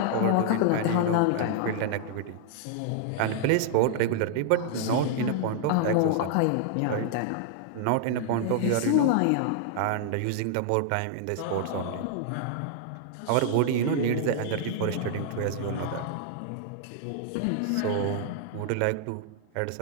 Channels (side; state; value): both; different; correlation -0.01